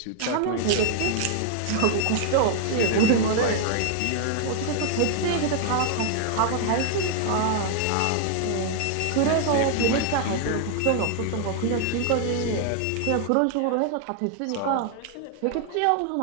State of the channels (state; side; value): different; both; correlation 0.00